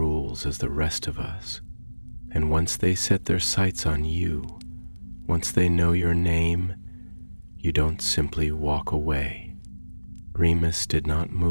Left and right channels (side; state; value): both; inverted; correlation -1.00